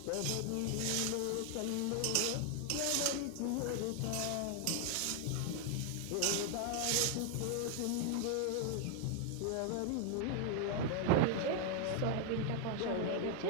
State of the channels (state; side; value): different; both; correlation 0.00